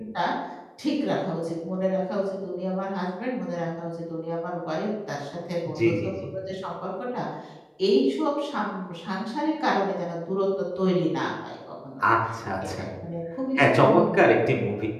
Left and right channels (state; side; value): identical; both; correlation 1.00